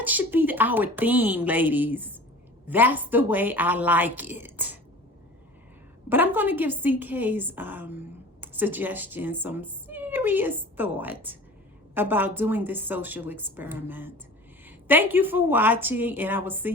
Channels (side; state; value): both; normal; correlation 0.40